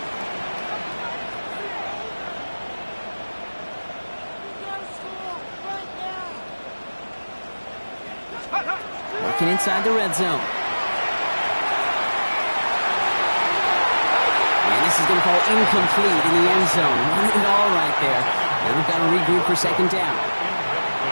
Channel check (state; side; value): inverted; both; correlation -1.00